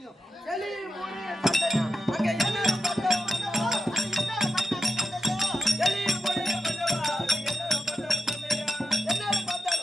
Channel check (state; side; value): normal; both; correlation 0.87